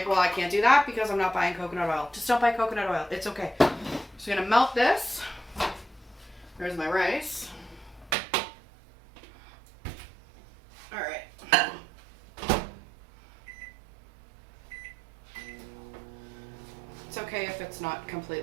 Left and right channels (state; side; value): drops out; left; at 8.2 s